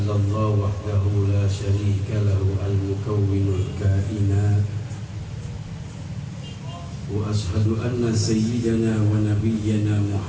wahdahu la syarika lahu al-mukawwinul kainat. Wa ashhadu anna sayyidana wa nabiyyana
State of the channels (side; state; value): both; identical; correlation 1.00